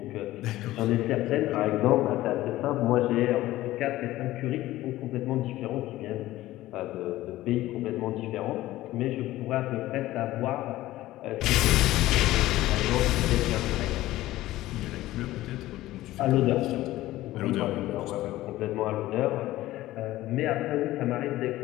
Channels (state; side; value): quieter; right; 16.2 dB